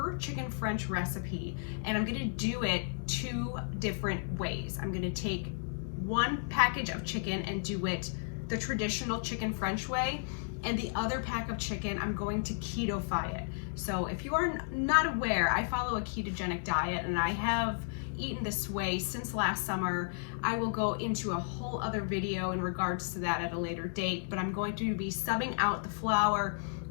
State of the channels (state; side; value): silent; right; digital silence